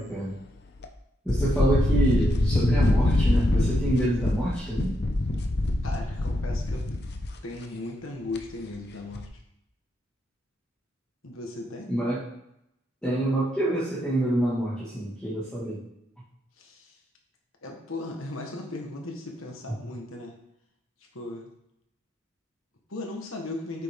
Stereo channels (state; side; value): normal; both; correlation 0.81